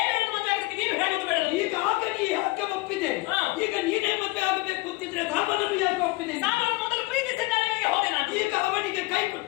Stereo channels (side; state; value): right; quieter; 22.7 dB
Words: ಮದುವೆ ಆಗೋದಕ್ಕೆ ನೀನು ಹೇಳುವುದು ಬೇಡ. ಈಗ ಆಗ ನೀ ಯಾಕೆ ಒಪ್ಪಿದೆ? ಈಗ ನೀನೇ ಮದುವೆ ಆಗಬೇಕು ಅಂತಿದ್ರೆ ಧರ್ಮನನ್ನು ಯಾಕೆ ಒಪ್ಪಿದೆ? ನಾನು ಮೊದಲು ಪ್ರೀತಿಸಿದ್ದವನಿಗೆ ಹೋದೆ ನಾನು. ಈಗ ಅವನಿಗೆ ಕೈ